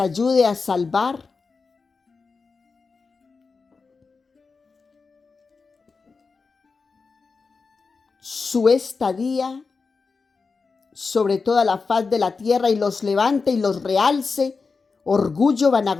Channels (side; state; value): right; quieter; 4.6 dB